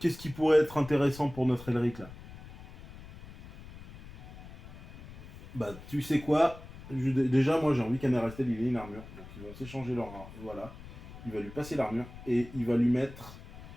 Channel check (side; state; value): left; noise; rumble, 16 dB below the sound